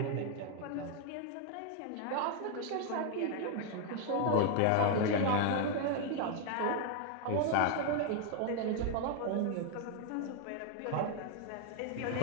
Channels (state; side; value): different; both; correlation 0.01